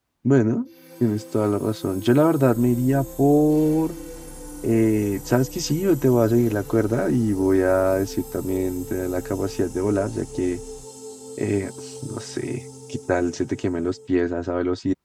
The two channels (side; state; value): both; identical; correlation 1.00